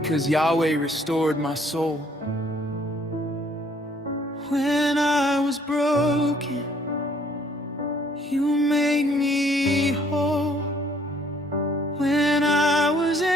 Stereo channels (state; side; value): normal; both; correlation 0.62